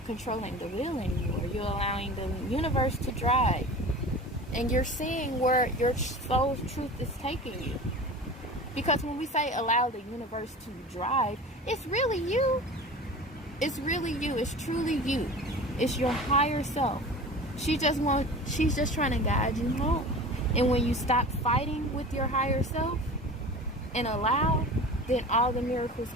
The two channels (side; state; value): both; normal; correlation 0.36